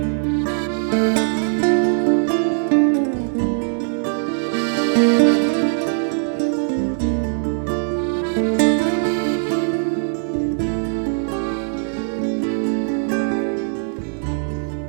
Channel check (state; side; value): silent; left; digital silence